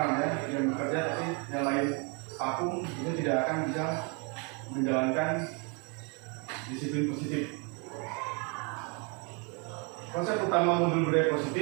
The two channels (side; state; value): left; quieter; 33.9 dB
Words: ya, yang bekerja, tapi yang lain vakum, itu tidak akan bisa menjalankan disiplin positif. Konsep utama modul budaya